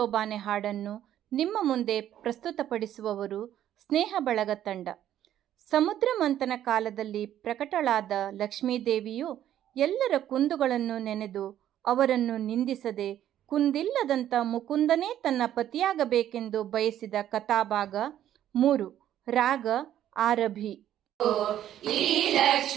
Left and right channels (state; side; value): quieter; left; 11.5 dB